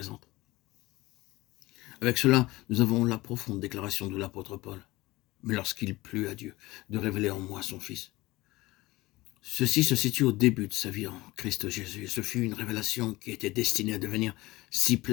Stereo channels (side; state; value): right; quieter; 19.7 dB